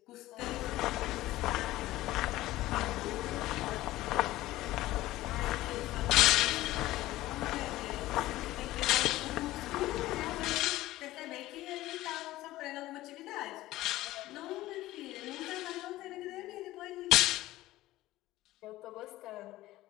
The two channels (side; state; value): right; quieter; 16.6 dB